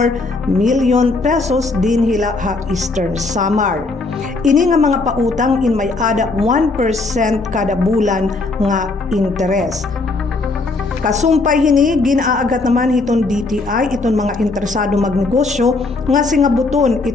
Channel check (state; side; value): quieter; right; 3.5 dB